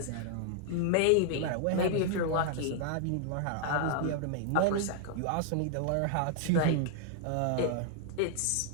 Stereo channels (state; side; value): different; both; correlation -0.01